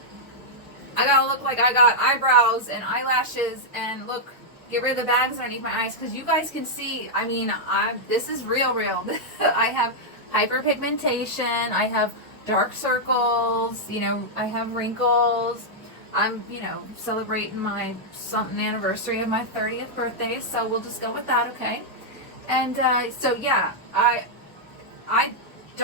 gotta look like I got eyebrows and eyelashes and look, get rid of the bags underneath my eyes, because you guys can see, I mean, this is real. I have hyperpigmentation, I have dark circles, I have wrinkles. I'm, celebrating my something anniversary of my 30th birthday, so we'll just go with that, okay? And so yeah, I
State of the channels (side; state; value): both; normal; correlation -0.05